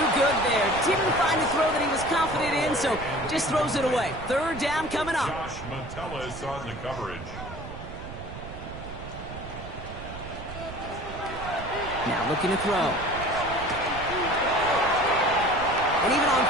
good there. Didn't find a throw that he was confident in, so just throws it away. 3rd down coming up. Josh Metellus on the coverage. Now looking to throw. And even on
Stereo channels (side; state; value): right; noise; rumble, 11 dB below the sound